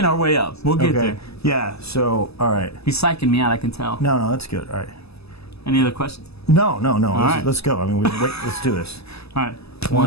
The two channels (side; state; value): right; late; 0.79 ms